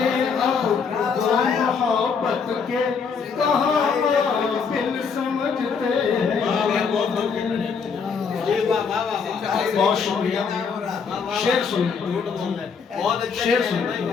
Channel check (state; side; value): quieter; right; 5.8 dB